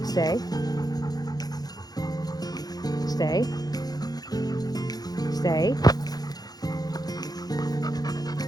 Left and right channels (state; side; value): late; right; 0.19 ms